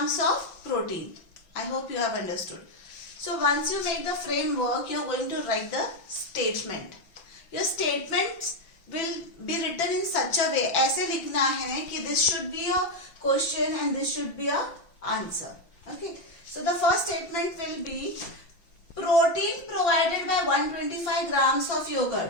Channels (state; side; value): late; right; 5.9 ms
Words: of protein? I hope you have understood. So once you make the framework, you are going to write the statement. Your statements will be written in such a way, ऐसे लिखना है कि this should be a question and this should be a answer. Okay. So the first statement will be protein provided by 125 grams of